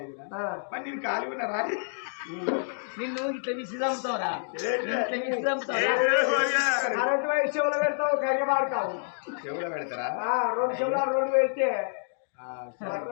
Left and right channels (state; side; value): silent; right; digital silence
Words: మరి నేను ఖాళీ ఉన్నా రాని నిన్ను ఇట్లా విసి చంపుతావురా కరెంట్ వైర్ చెవులో పెడతావు కరిగ పాడుతావు చెవులో పెడతారా 2 చెవులు 2 పెడితే